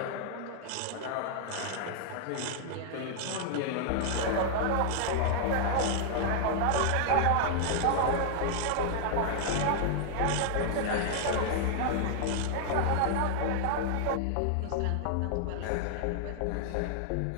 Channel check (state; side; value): different; both; correlation 0.00